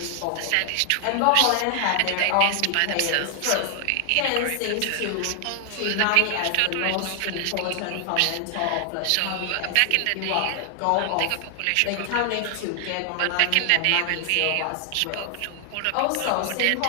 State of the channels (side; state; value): both; different; correlation 0.00